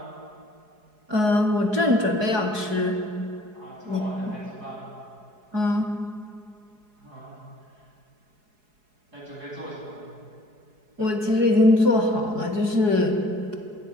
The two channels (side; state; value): left; late; 4.7 ms